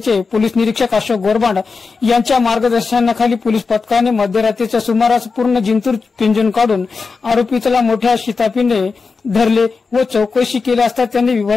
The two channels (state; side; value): quieter; right; 4.6 dB